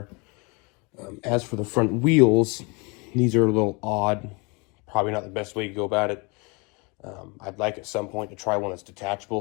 As for the front wheels, these are a little odd. Probably not the best way to go about it. I'd like at some point to try one that's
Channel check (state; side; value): quieter; right; 29.6 dB